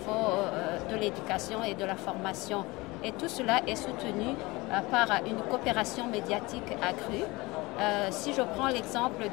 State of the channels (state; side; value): quieter; right; 22.6 dB